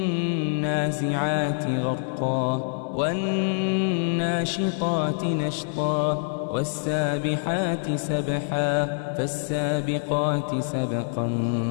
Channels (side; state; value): right; silent; digital silence